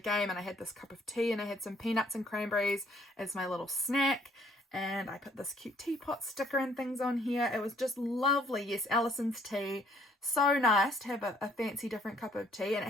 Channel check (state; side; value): normal; both; correlation 0.62